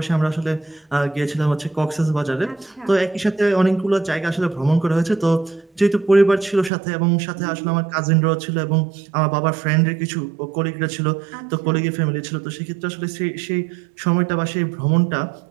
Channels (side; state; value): left; drops out; at 6.7 s